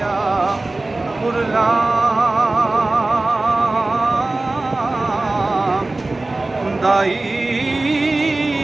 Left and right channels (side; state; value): left; quieter; 3.0 dB